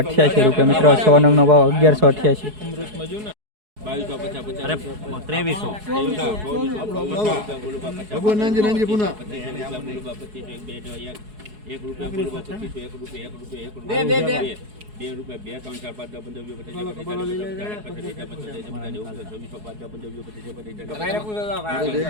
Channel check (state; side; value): late; left; 4.7 ms